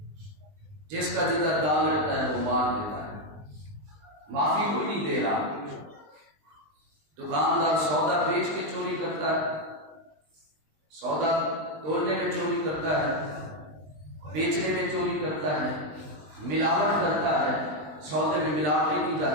جس کا جدھر دال رہتا ہے وہ مان دیتا ہے, معافی کوئی نہیں دے رہا. دکاندار سودا بیچ کے چوری کرتا ہے, سودا تولنے میں چوری کرتا ہے, بیچنے میں چوری کرتا ہے, ملاوٹ کرتا ہے, سودے میں ملاوٹ کی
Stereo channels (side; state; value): left; late; 20 ms